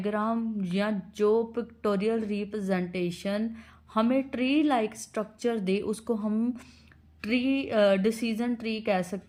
या जो पिक्टोरियल रिप्रेजेंटेशन हमें ट्री लाइक स्ट्रक्चर दे उसको हम ट्री डिसीजन ट्री कह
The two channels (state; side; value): identical; both; correlation 1.00